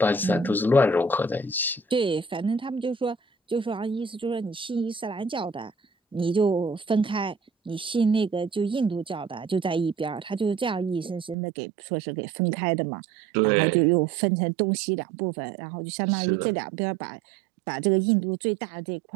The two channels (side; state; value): left; drops out; at 11.4 s